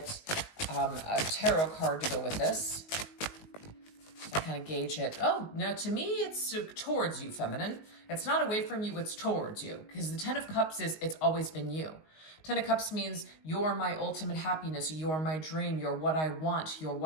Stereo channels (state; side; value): late; right; 19 ms